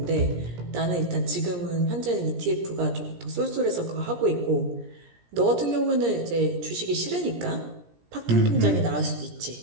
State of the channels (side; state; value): left; late; 17 ms